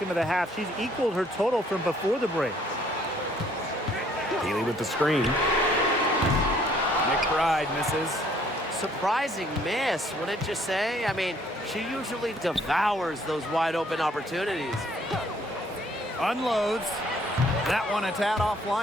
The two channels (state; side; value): normal; both; correlation 0.62